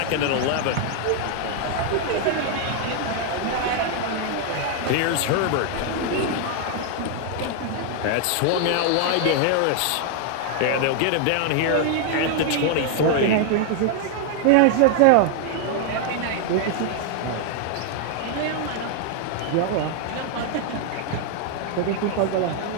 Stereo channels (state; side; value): different; both; correlation 0.00